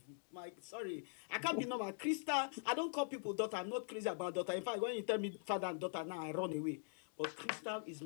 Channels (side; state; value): right; silent; digital silence